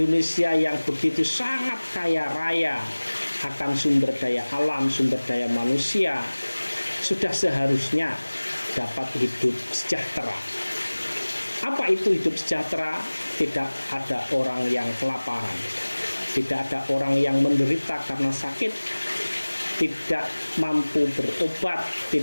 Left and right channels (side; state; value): both; inverted; correlation -1.00